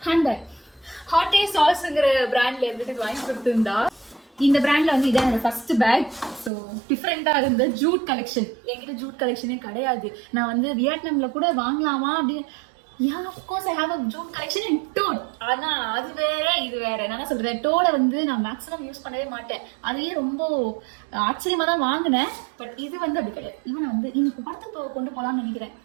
ஹேண்ட்பேக். ஹாட்டே சாஸ்ங்கிற பிராண்ட்ல இருந்துட்டு வாங்கி கொடுத்துருந்தா. இந்த பிராண்ட்ல வந்து இதான் என்னோட ஃபர்ஸ்ட் பேக். ஸோ டிஃப்ரெண்டா இருந்த ஜூட் கலெக்ஷன். என்கிட்ட ஜூட் கலெக்ஷனே கிடையாது. நான் வந்து வியட்நாம்ல கூட வாங்கலாமா அப்படின்னு. Yeah, of course I have a jute collection in toad. ஆனா அது வேற இது வேற. என்ன சொல்றேன், டோட வந்து நான் மேக்ஸிமம் யூஸ் பண்ணவே மாட்டேன். அதையே ரொம்ப ஆச்சரியமா தான் வாங்கினேன். பட் இது வந்து அப்படி கிடையாது. இவன் வந்து இன்னைக்கு படத்துக்கு கொண்டு போலாம்னு நினைக்கிறேன்.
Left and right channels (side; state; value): left; drops out; at 6.5 s